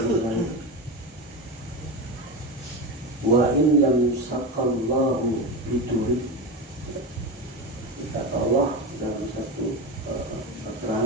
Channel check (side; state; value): both; normal; correlation 0.19